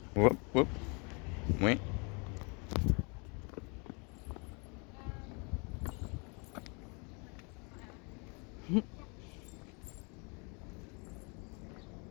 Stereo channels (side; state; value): right; quieter; 33.0 dB